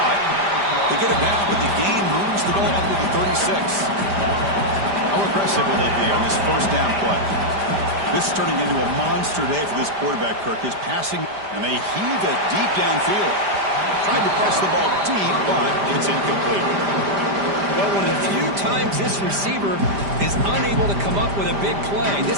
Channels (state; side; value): late; left; 5.0 ms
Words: They get it down, but the gain moves the ball up to the 36. How aggressive will they be on this 1st down play? This is turning into a monster day for this quarterback, Kirk. His passing, and they heave it deep downfield. Tried to press the ball deep, but it's incomplete. Well, one of the few times this receiver is unable to come up with a big play. This